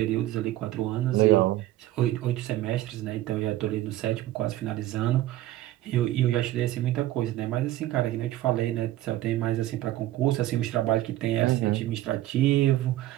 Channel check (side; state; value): left; quieter; 14.9 dB